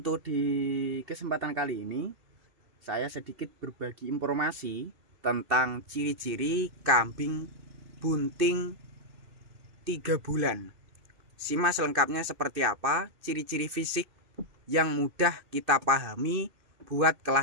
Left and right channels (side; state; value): left; late; 2.6 ms